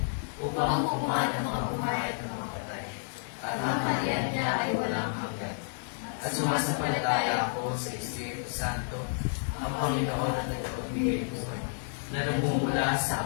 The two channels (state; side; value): silent; right; digital silence